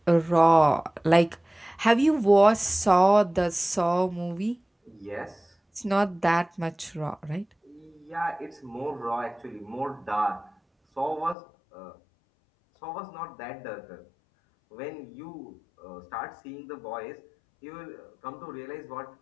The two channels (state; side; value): drops out; right; at 11.4 s